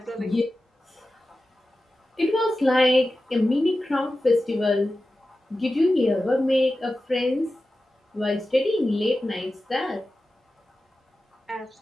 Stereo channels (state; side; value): normal; both; correlation 0.93